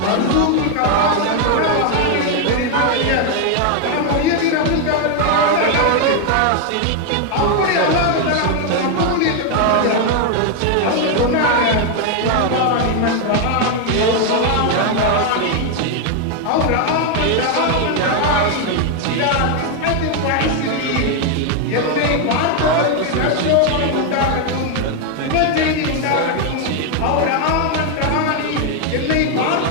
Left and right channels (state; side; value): different; both; correlation 0.01